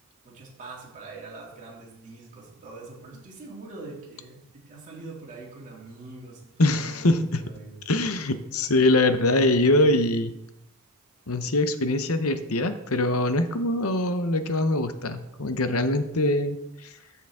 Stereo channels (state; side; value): normal; both; correlation 0.20